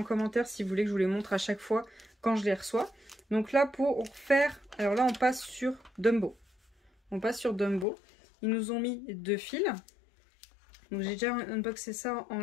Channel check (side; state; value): right; drops out; at 7.9 s